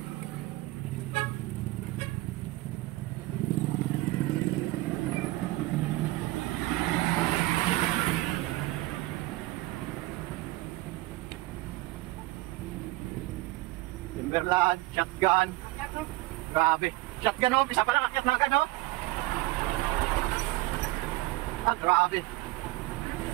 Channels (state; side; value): quieter; left; 19.6 dB